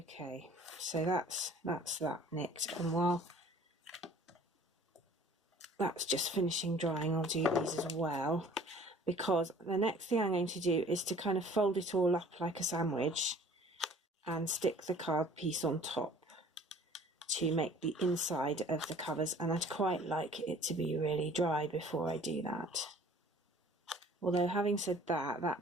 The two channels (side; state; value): both; normal; correlation 0.50